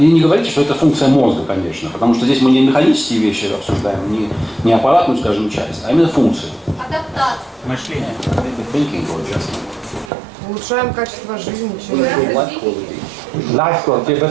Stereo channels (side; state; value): left; drops out; at 10.1 s